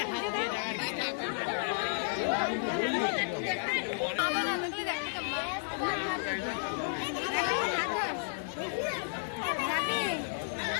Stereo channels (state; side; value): silent; right; 56 dB below the other